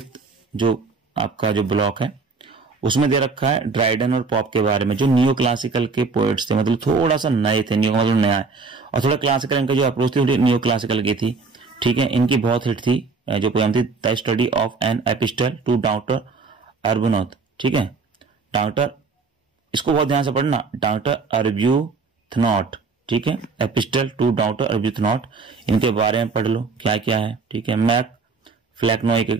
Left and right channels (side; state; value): left; quieter; 4.3 dB